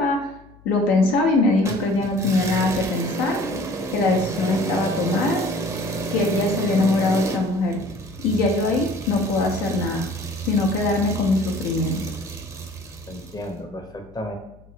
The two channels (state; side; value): noise; left; hum, 25 dB below the sound